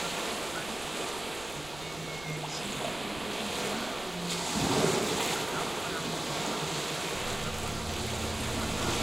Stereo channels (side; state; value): right; noise; rumble, 16 dB below the sound